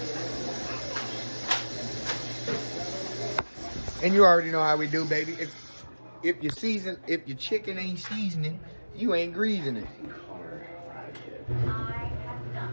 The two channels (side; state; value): both; inverted; correlation -1.00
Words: And you already know how we do, baby. If your chicken ain't seasoning, you ain't greasing it. I have not,